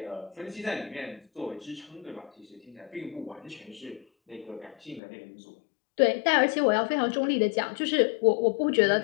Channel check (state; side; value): drops out; right; at 5.0 s